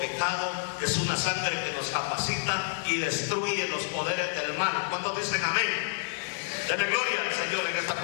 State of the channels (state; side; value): silent; right; 59 dB below the other